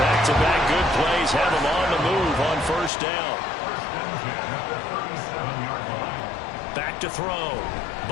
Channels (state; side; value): drops out; right; at 2.9 s